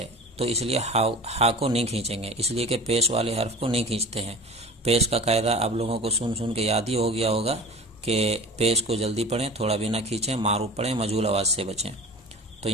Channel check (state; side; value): normal; both; correlation 0.38